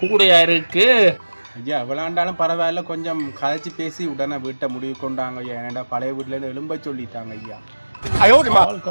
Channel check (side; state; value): both; inverted; correlation -1.00